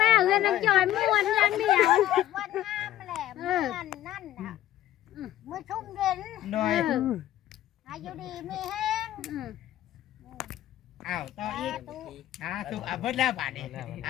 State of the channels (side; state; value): right; quieter; 13.1 dB